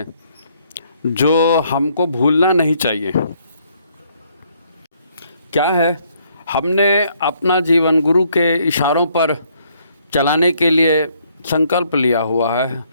जो हमको भूलना नहीं चाहिए। क्या है, हमने अपना जीवन गुरु के इशारों पर चलाने के लिए संकल्प लिया हुआ है,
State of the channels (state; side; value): inverted; both; correlation -0.68